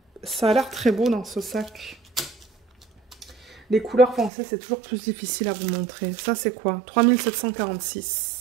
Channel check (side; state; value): left; drops out; at 4.3 s